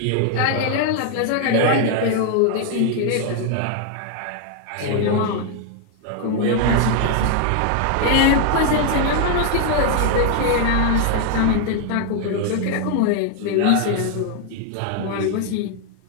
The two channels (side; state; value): both; different; correlation 0.00